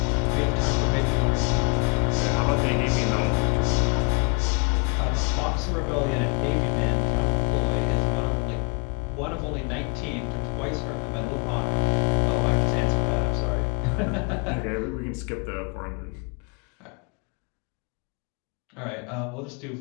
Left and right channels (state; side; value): quieter; right; 33.7 dB